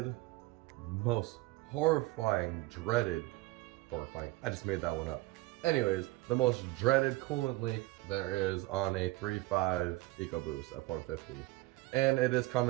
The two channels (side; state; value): left; quieter; 20.0 dB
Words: most horrifying, I just made that one up. Anyways, the most dreaded coolant leak there is on a 3.5 EcoBoost F150, and it is